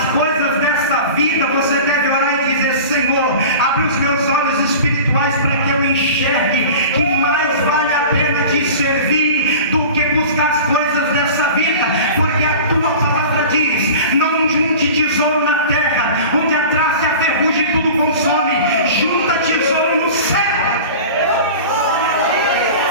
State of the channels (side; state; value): both; inverted; correlation -0.37